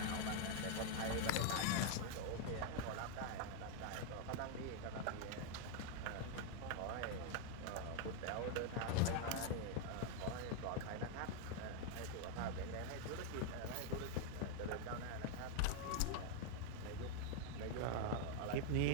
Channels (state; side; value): different; both; correlation 0.00